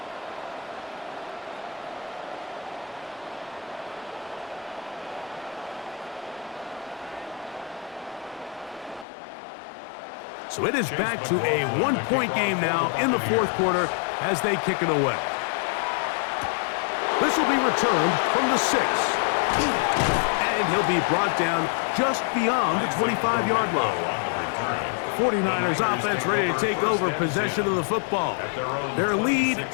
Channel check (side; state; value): right; drops out; at 9.1 s